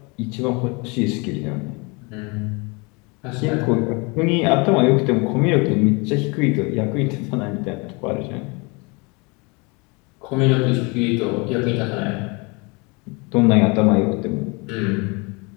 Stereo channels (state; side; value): quieter; right; 29.2 dB